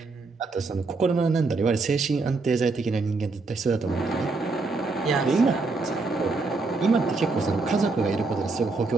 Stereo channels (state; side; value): quieter; left; 3.8 dB